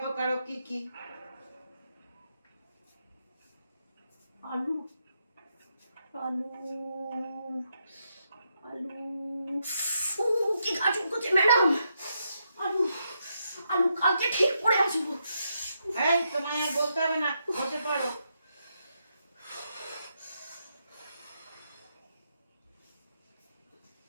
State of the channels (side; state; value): both; inverted; correlation -0.81